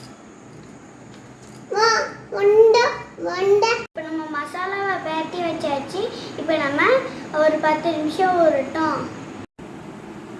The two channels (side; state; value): both; identical; correlation 1.00